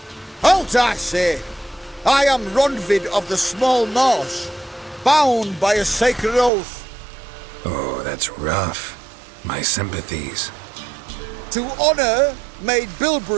Halt, I say! I am Ronvid of the Small Marsh, bound by a sacred oath. Oh, that's rough. My sympathies. To honour Maid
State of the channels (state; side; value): drops out; left; at 6.5 s